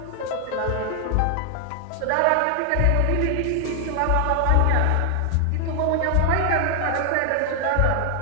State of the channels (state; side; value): different; both; correlation 0.00